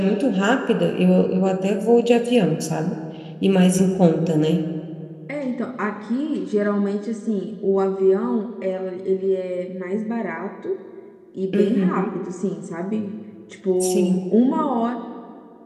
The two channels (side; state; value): both; identical; correlation 1.00